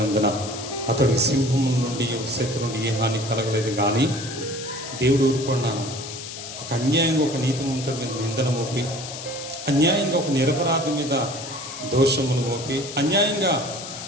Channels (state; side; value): noise; left; hiss, 10 dB below the sound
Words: అతడికి సింహం నుండి శత్రు నుండి ఏ హాని కలగలేదు. కానీ దేవుడు ఊరుకున్నాను. ఒక అన్యాయంగా ఒక నీతిమంతుడి మీద నిందన మోపి, అన్యాయంగా ఒక నిరపరాధి మీద దోషములు మోపి, అన్యాయంగా